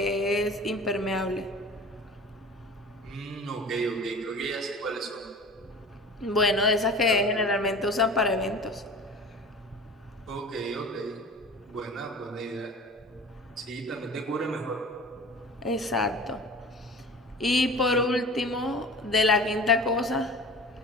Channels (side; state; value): both; normal; correlation 0.39